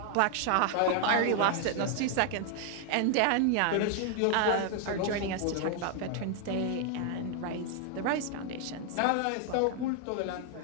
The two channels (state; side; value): different; both; correlation 0.00